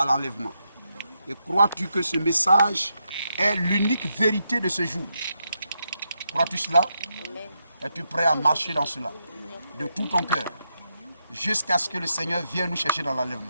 l'enlèvement? Et crois-tu que ce message est l'unique vérité de ce jour? Crois-tu cela? Es-tu prêt à marcher dans cela de tout ton cœur jusqu'à ce que le Seigneur vienne nous chercher dans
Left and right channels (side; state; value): both; inverted; correlation -0.83